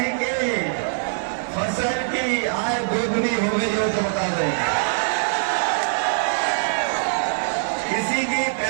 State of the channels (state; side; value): silent; left; 58 dB below the other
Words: के फसल की आय दोगुनी हो गई हो तो बता दें। किसी की